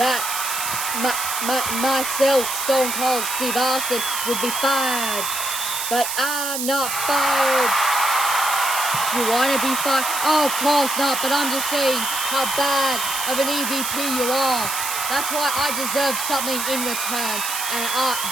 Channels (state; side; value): noise; right; hiss, 3 dB below the sound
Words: myself, Stone Cold Steve Austin, would be fired. But I'm not fired. You want to be fired? Oh, of course not, but I'm just saying how bad of an EVP you are. That's why I deserve something in return. And